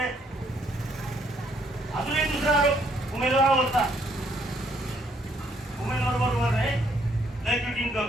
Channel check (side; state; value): both; normal; correlation 0.68